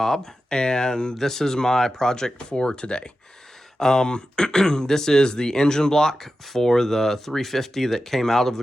and this is my project for today. This is the engine block for the 350 that came out of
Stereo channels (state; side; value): normal; both; correlation 0.92